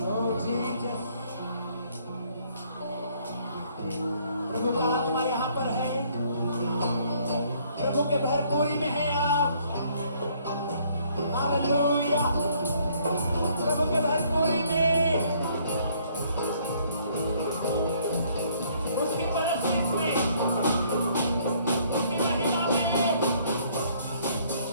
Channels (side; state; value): both; inverted; correlation -0.64